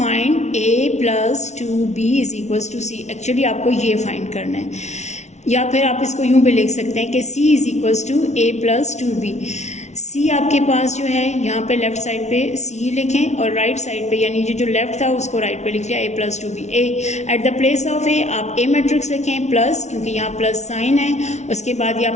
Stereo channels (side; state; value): right; late; 0.32 ms